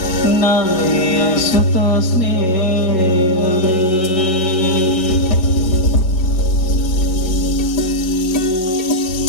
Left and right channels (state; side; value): late; right; 5.4 ms